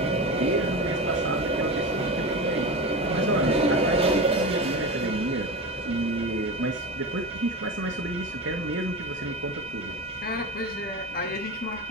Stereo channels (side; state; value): both; normal; correlation 0.25